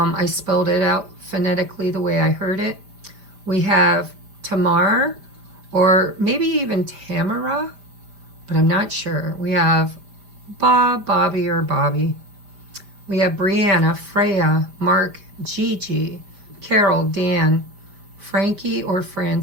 spelled it out phonetically the way I heard it. We have Tamar, or maybe even Tamara, but I'm not sure. We have Bob, Bobby, or Bobby. We have Brianna, Freya, Mark, Gigi, Carol, Dan, Frankie or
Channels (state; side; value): late; left; 5.0 ms